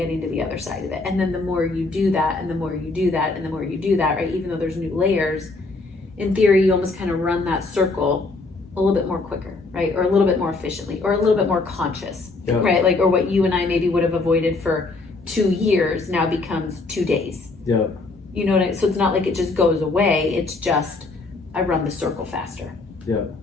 to the other side of it. And then the more you do that, and the more you do that, and the more you do that, right? Even though there's new layers, in theory, you almost kind of run that circle a little bit more quicker, right? Or a little bit more efficiently, or a little bit more conscious, right? Like, or what you and I maybe would have avoided for 2 years now becomes 2 days. Yeah. You know what I mean? So it's not like it just goes away. It's just, I run the circle faster. Yeah,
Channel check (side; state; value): right; quieter; 3.5 dB